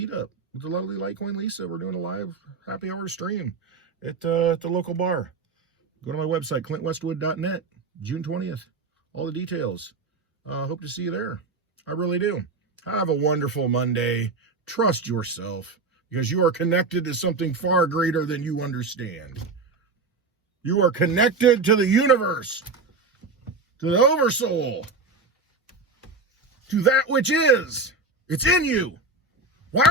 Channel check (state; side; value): quieter; left; 3.8 dB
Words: with the lovely Litecoin Lisa. We're doing a live happy hour stream at the local bar. Go to my website, clintwestwood.net, June 20th. All the details. Hope to see you there. I really do. Have a wonderful Monday. Trust yourself because you are connected to something far greater than you understand. You are connected to the universe, to the oversoul, to that which is. It's in you. Why